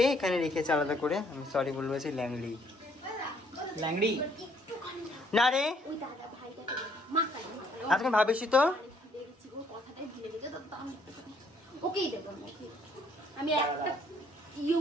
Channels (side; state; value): both; normal; correlation 0.65